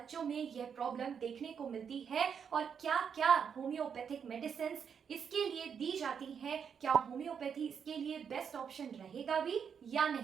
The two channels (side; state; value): left; quieter; 7.1 dB